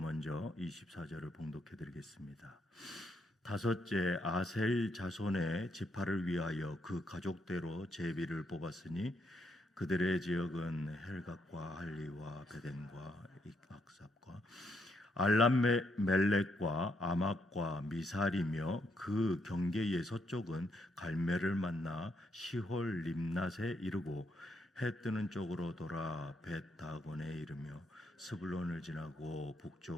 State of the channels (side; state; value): both; normal; correlation 0.77